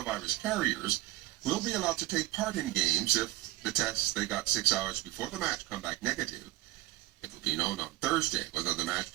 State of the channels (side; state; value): left; quieter; 17.6 dB